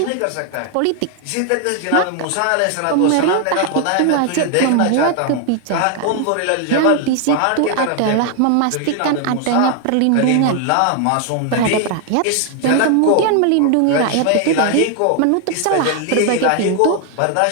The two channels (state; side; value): different; both; correlation 0.01